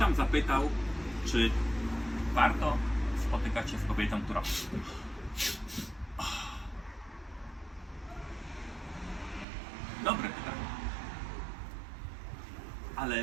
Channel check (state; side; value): drops out; left; at 9.5 s